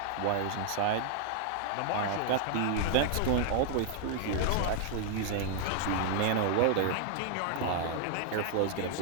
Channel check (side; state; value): both; different; correlation 0.00